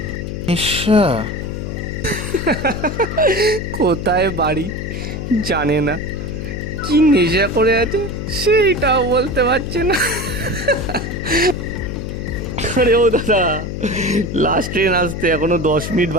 নেশা? কোথায় বাড়ি জানে না, কি নেশা করে আছে সেইটাও বলতে পারছে না। আরে ও দাদা, লাস্ট ট্রেন আসতে এখনো 10 মিনিট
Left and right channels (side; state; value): left; noise; hum, 5 dB below the sound